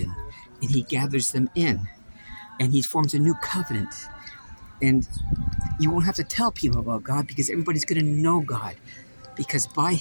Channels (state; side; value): inverted; both; correlation -1.00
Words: and he gathers them in, and he forms a new covenant. And you won't have to tell people about God because everybody's going to know God. Because by